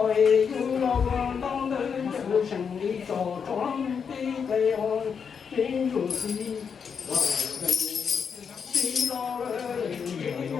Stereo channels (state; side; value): quieter; right; 6.5 dB